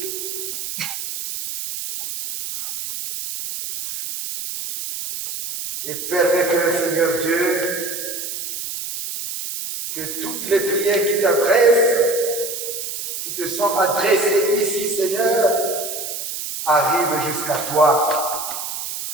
Et permets que, Seigneur Dieu, que toutes les prières qui t'adressent, qui te sont adressées ici, Seigneur, arrivent jusqu'à toi,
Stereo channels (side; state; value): right; noise; hiss, 6 dB below the sound